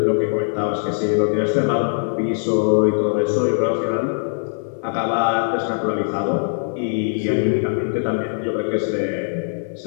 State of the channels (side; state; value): right; silent; digital silence